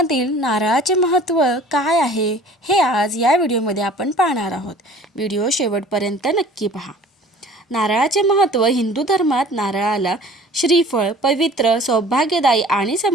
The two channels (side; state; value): both; normal; correlation 0.47